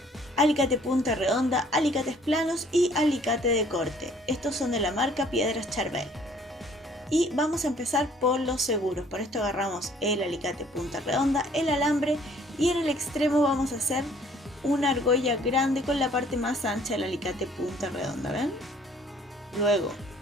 alicate punta redonda, alicates planos y alicate de corte. Estos son de la marca Piedras Charbel. Y vamos a empezar por los seguros. Para esto agarramos el alicate punta redonda, el alambre y en el extremo vamos a hacer una argolla grande con la parte más ancha del alicate punta redonda, ¿ven? Luego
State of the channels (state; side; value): normal; both; correlation 0.58